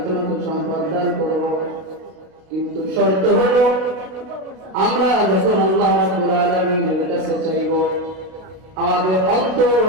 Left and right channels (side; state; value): left; late; 32 ms